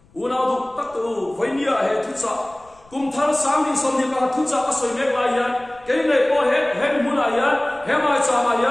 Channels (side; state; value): left; noise; rumble, 30 dB below the sound